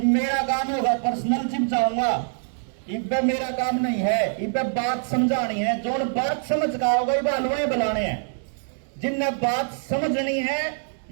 मेरा काम होगा पर्सनल जिम जाऊंगा, इब्बे मेरा काम नहीं है। इब्बे बात समझानी है, जो बात समझ का होगा ये बालुए बुलाने हैं। जिनने बात समझनी है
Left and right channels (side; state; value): left; silent; digital silence